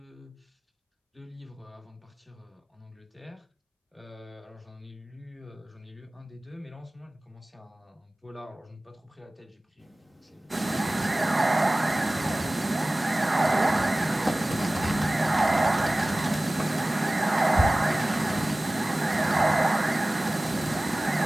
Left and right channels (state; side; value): normal; both; correlation 0.98